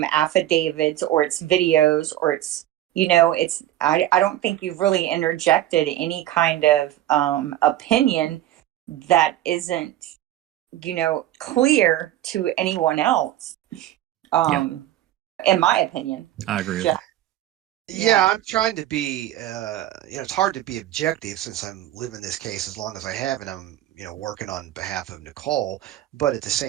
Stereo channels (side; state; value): left; quieter; 13.4 dB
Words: affidavits or it's videos or it's I don't think you've really interjected any kind of opinion that isn't clear to anyone else. In my opinion, I agree. Yeah, I'm trying to be, it's hard to be objective since I'm living this case as long as I have, and I'm, working on behalf of Nicole. But at the